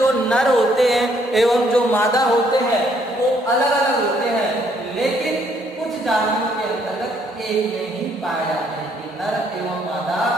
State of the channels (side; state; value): both; normal; correlation 0.68